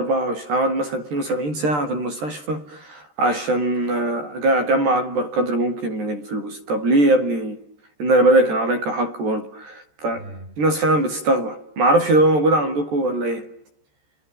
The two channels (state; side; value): late; left; 14 ms